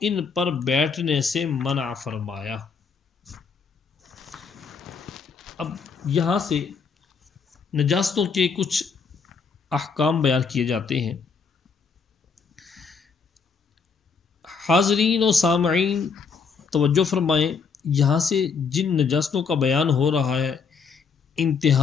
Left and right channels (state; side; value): quieter; right; 5.5 dB